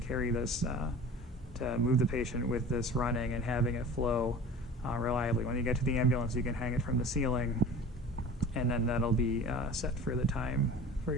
this, to move the patient with this running and having it flow reliably. When you get to the ambulance, you can hang it from the ceiling, and then that'll be set for the time, for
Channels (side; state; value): both; normal; correlation 0.40